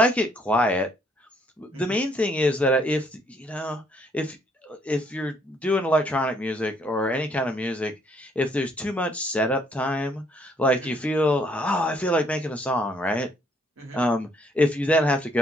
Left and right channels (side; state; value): both; normal; correlation 0.67